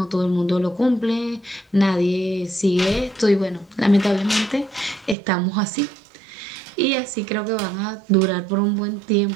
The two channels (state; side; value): drops out; left; at 5.2 s